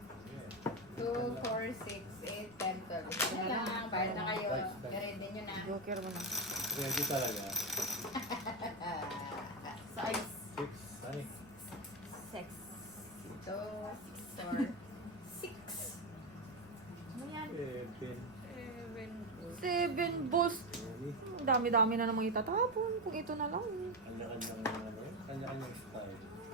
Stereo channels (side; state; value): right; noise; rumble, 27 dB below the sound